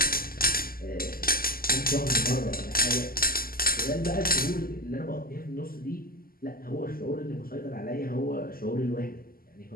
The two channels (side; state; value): right; late; 0.42 ms